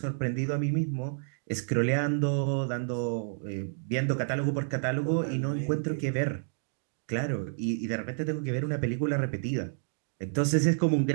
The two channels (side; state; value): left; silent; digital silence